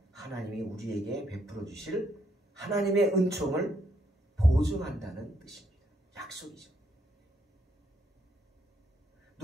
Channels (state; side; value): normal; both; correlation 0.73